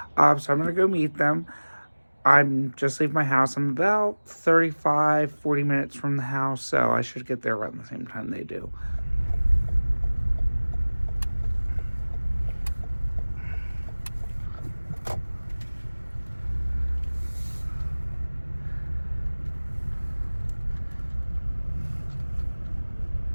So I'm going to go meet them. I'm just leaving my house. I'm about 40 minutes from the house, so I should get there around the same time they do.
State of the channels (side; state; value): both; inverted; correlation -1.00